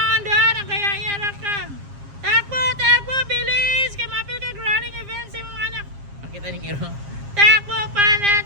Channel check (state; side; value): late; left; 7.4 ms